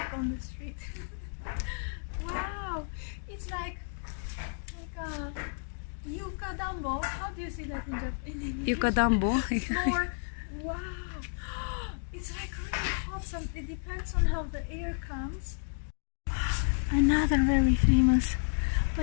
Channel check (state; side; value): silent; right; digital silence